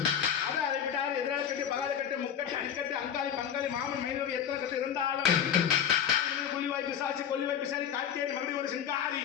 அதை அதை விட்டால் எதிராளி கட்டு பகாத கட்டு முக்கட்டு அடிக்கட்டு அங்காளி பங்காளி மாமன் மைனவி எத்தனை கட்டு இருந்தாலும் கொல்லிவாய் பிசாச்சி கொல்லிவாய் பிசாச்சி காட்டேரி மறுபடியும் ஒரு சிங்காரி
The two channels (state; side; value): quieter; right; 8.8 dB